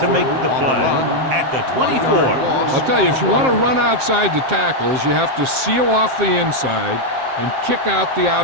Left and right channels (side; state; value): left; late; 7.6 ms